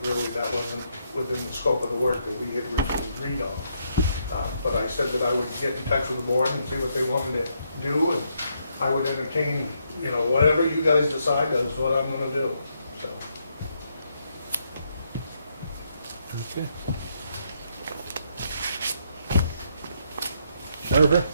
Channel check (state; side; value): inverted; both; correlation -0.76